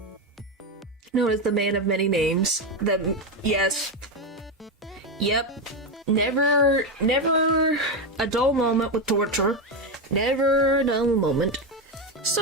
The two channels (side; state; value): both; normal; correlation 0.11